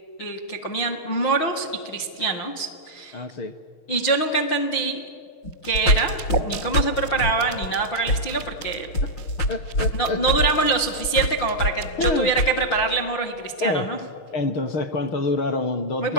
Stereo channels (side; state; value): right; late; 6.4 ms